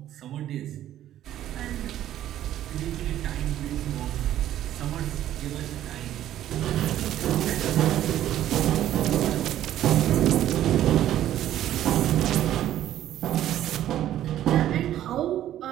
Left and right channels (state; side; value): quieter; left; 12.3 dB